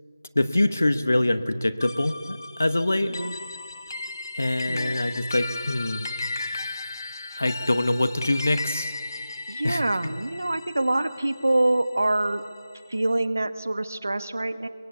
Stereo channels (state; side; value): inverted; both; correlation -0.95